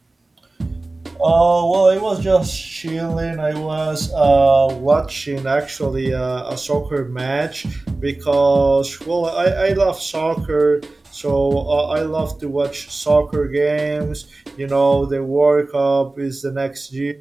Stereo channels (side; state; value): left; quieter; 3.1 dB